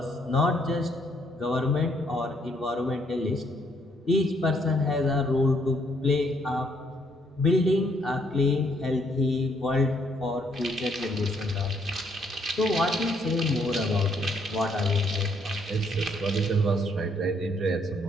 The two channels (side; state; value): both; normal; correlation 0.69